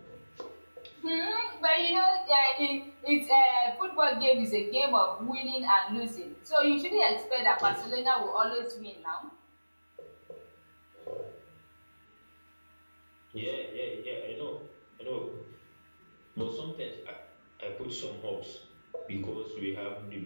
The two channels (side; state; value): both; inverted; correlation -1.00